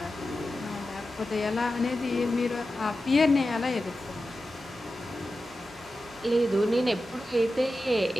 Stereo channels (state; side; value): normal; both; correlation 0.92